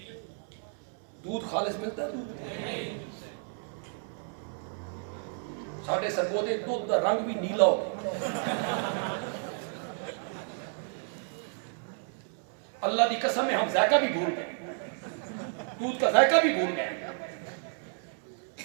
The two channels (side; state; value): left; silent; 57 dB below the other